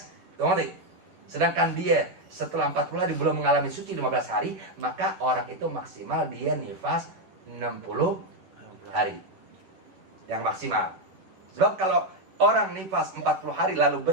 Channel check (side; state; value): left; late; 11 ms